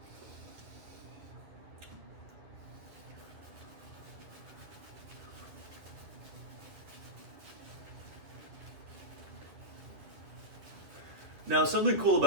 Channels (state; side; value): late; left; 11 ms